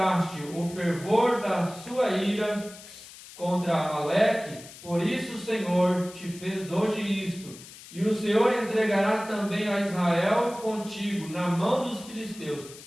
o fervor da sua ira contra Amaleque, por isso o Senhor te fez hoje isto, e o Senhor entregará também a Israel contigo na mão dos filisteus,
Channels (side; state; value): left; noise; hiss, 17 dB below the sound